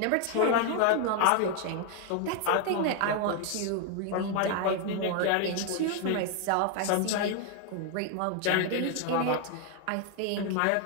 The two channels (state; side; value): different; both; correlation 0.00